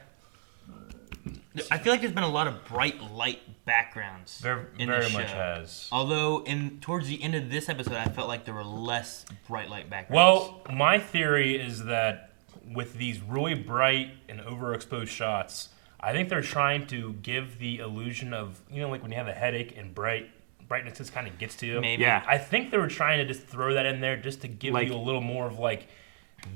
I feel like there's been a lot of bright light backgrounds in Very the show. much has. Although, towards the end of this episode, I felt like there were less bright light backgrounds. Well, my theory is that with these really bright and overexposed shots, I think they're trying to give the illusion of, you know, like when you have a headache and brightness just kind of gets to you. Maybe. Yeah. I think they were trying to just throw that in there just to give Like- you a little more of like,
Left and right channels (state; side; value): silent; left; 57 dB below the other